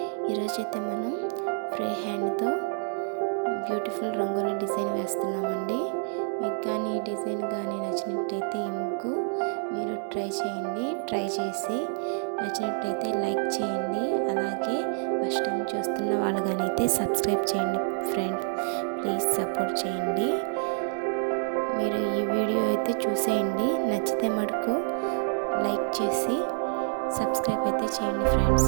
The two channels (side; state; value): left; silent; digital silence